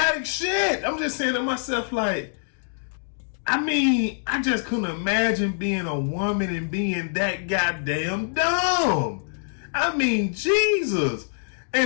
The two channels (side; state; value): right; silent; digital silence